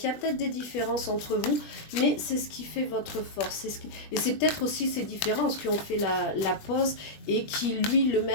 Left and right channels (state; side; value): late; right; 21 ms